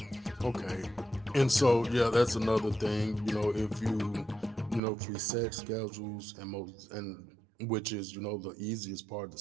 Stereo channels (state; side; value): drops out; left; at 4.8 s